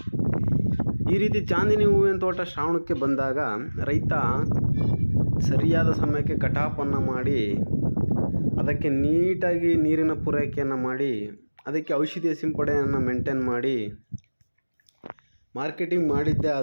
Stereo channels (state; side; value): inverted; both; correlation -1.00